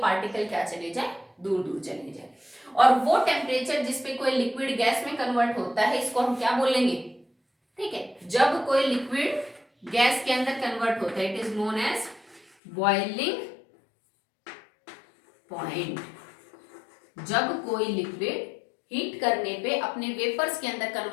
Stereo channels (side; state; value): right; drops out; at 12.5 s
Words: पार्टिकल क्या चले जाए, दूर दूर चले जाए। और वो टेम्परेचर जिसपे कोई लिक्विड गैस में कन्वर्ट होता है, इसको हम क्या बोलेंगे, ठीक है, जब कोई लिक्विड गैस के अंदर कन्वर्ट होता है, it is known as boiling point. जब कोई लिक्विड हीट करने पे अपने वेपर्स के अंदर